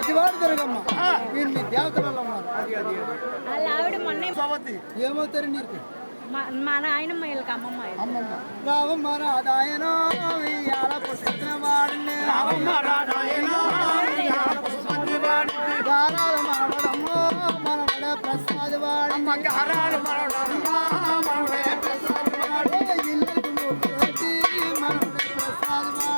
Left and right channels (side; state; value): both; inverted; correlation -1.00